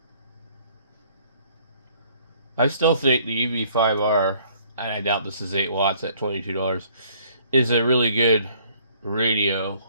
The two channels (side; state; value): both; inverted; correlation -0.60